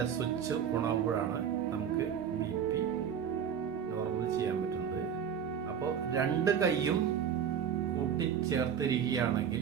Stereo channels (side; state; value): left; quieter; 8.1 dB